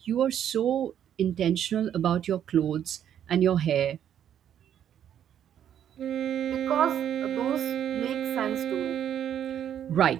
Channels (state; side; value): quieter; left; 9.8 dB